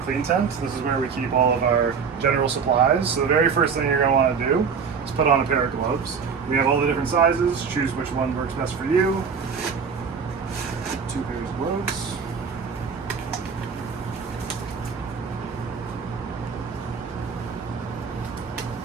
Tent. This is where we keep all of our general supplies. So the very first thing you're going to want to do is put on a pair of gloves. We have all the different sizes. Choose which one works best for you. 2 pairs of gloves.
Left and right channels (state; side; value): quieter; left; 6.0 dB